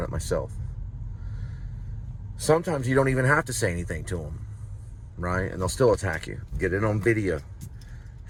it myself. Sometimes you don't even have to say anything to them, right? And they'll still attack you. Get it on video.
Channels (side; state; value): both; identical; correlation 1.00